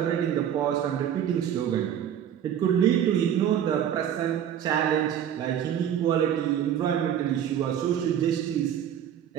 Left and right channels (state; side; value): quieter; left; 9.7 dB